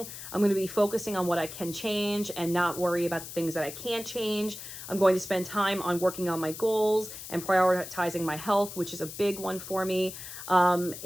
I'm going to be focusing on what I can change and not worry about the things that I can't change. I'm going to spend time on working on my goals and prioritizing my health, which is a big one for me.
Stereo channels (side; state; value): left; noise; hiss, 11 dB below the sound